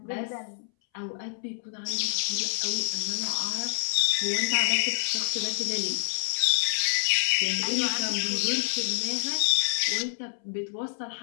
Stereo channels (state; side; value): silent; right; 60 dB below the other